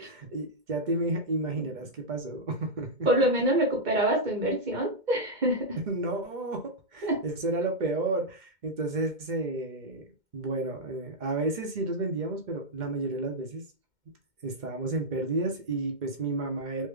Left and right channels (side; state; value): left; late; 2.1 ms